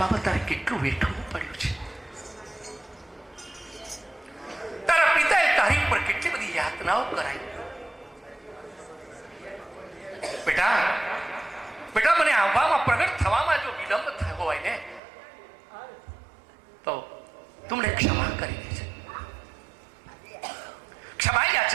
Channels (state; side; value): drops out; left; at 15.0 s